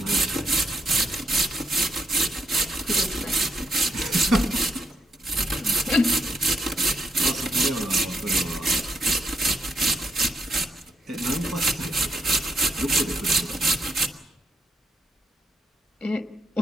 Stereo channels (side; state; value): both; normal; correlation 0.76